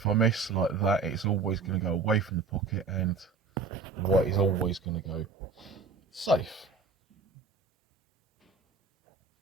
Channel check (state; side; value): quieter; left; 4.4 dB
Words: I miss like that, it's always going to go away from the pocket, and the white is always going to go safe.